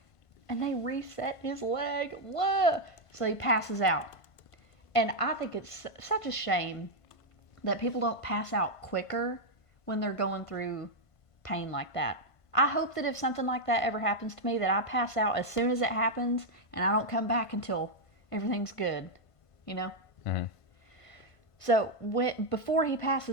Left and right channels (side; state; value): right; late; 1.5 ms